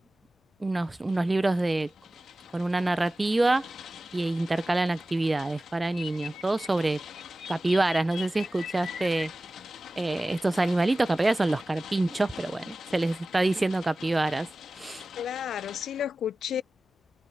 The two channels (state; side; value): normal; both; correlation 0.96